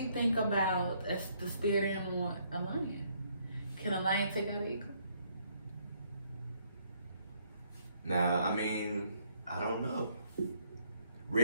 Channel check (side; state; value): both; inverted; correlation -0.69